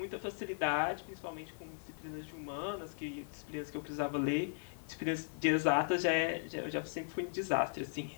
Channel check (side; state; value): right; silent; digital silence